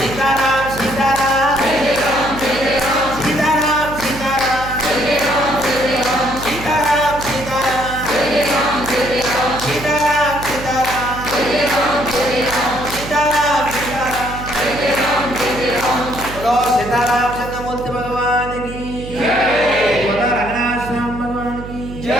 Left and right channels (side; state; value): right; noise; hum, 11 dB below the sound